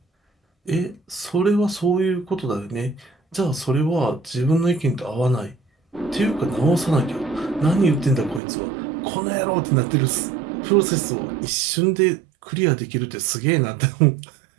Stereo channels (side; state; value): left; drops out; at 8.4 s